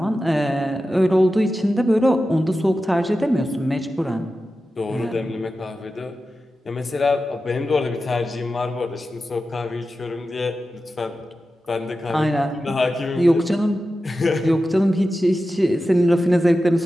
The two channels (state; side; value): normal; both; correlation 0.92